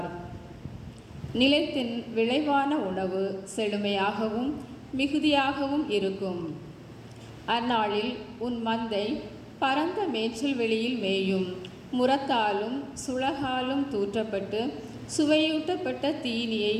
நிலத்தின் விளைவான உணவு செழுமையாகவும் மிகுதியாகவும் இருக்கும். அந்நாளில் உன் மந்தை பரந்த மேய்ச்சல் வெளியில் மேயும். முரத்தாலும் சுளகாலும் தூற்றப்பட்டு சுவையூட்டப்பட்ட தீனியை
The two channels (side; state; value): both; identical; correlation 1.00